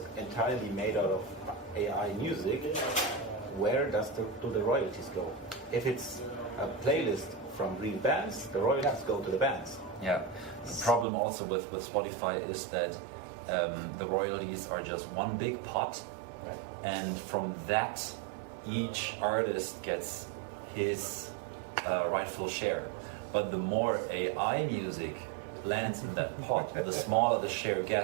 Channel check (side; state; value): left; drops out; at 11.1 s